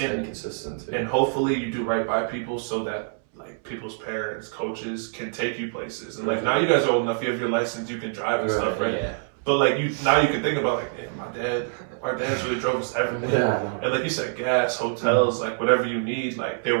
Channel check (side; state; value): left; silent; 61 dB below the other